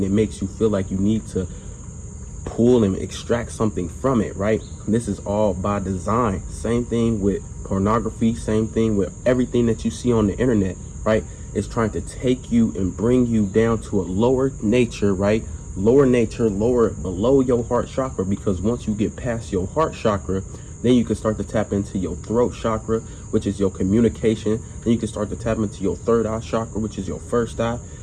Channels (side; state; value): both; identical; correlation 1.00